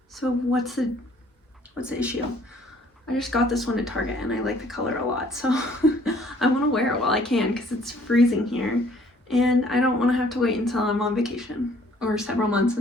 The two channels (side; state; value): both; normal; correlation 0.59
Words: So what's the issue? I just got this one at Target and I like the color a lot. So I want to wear it while I can because it's freezing here. And I don't want to have to wait until I'm on vacation or several months